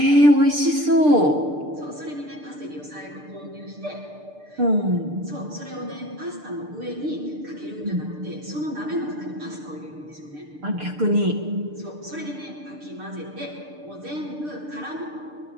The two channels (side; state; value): left; late; 6.7 ms